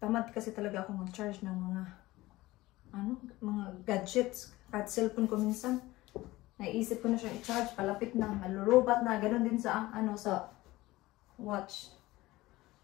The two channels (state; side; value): quieter; right; 18.5 dB